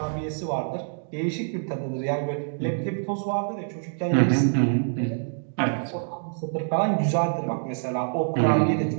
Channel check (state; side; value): silent; left; digital silence